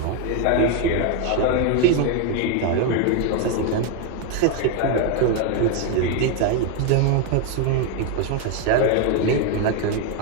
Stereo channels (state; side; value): different; both; correlation 0.01